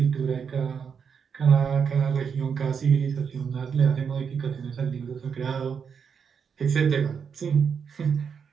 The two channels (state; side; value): quieter; left; 6.7 dB